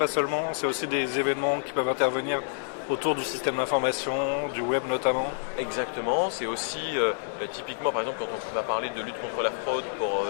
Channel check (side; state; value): right; silent; digital silence